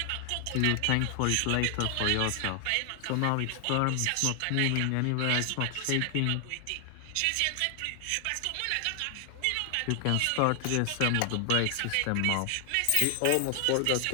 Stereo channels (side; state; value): both; different; correlation 0.00